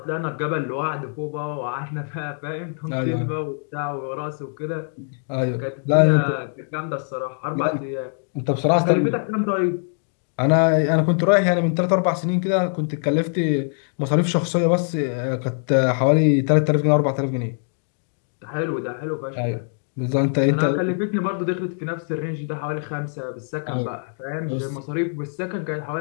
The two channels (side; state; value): right; silent; digital silence